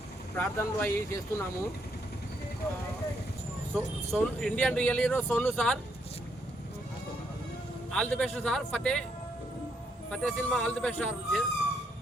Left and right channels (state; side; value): normal; both; correlation 0.74